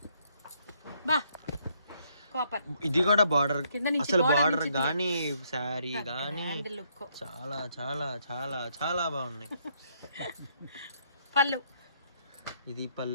బా కాపర్. ఇది కూడా బార్డర్. అసలు బార్డర్ గానీ శారీ గానీ చాలా చాలా చాలా చాలా బాగున్నాయి. పళ్ళు ఇది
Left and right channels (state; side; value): inverted; both; correlation -0.71